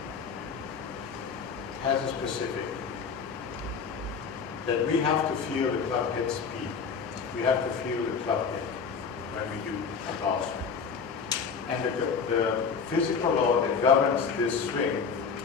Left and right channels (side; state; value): right; quieter; 5.8 dB